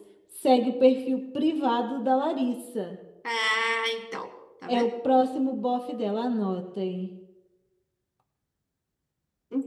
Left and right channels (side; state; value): both; identical; correlation 1.00